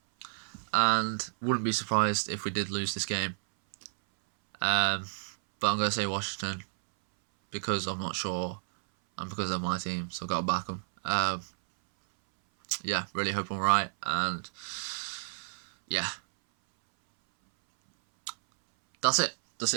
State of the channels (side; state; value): left; silent; 57 dB below the other